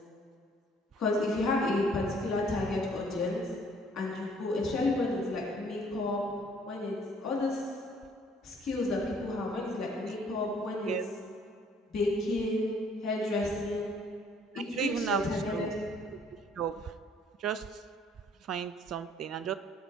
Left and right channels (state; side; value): normal; both; correlation 0.60